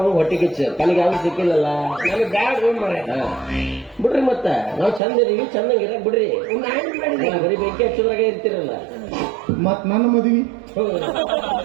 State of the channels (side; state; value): left; drops out; at 5.0 s